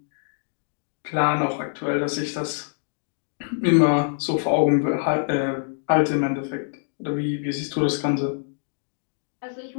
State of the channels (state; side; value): silent; right; digital silence